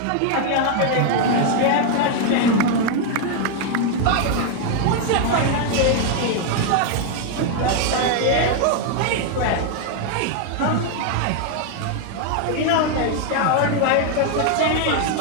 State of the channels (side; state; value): both; different; correlation 0.00